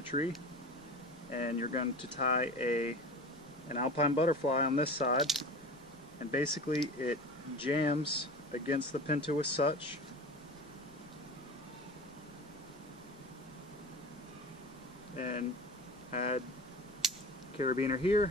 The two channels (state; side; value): noise; left; rumble, 28 dB below the sound